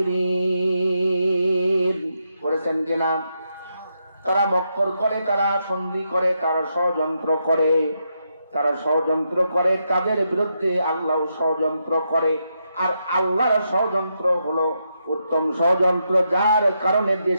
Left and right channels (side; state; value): both; inverted; correlation -0.82